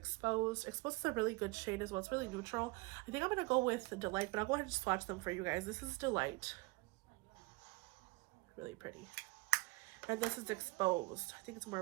Exposed is a really good shade as well. It's really neutral. I think I'm going to go with Delight, but I'll go ahead and swatch them for you guys. This is Delight. Really pretty. And this is Exposed. I think it's more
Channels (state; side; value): quieter; left; 24.9 dB